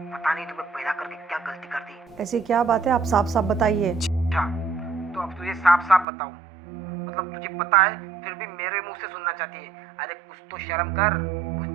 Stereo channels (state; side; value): drops out; left; at 6.1 s